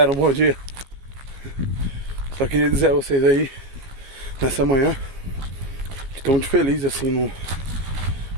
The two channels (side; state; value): left; late; 15 ms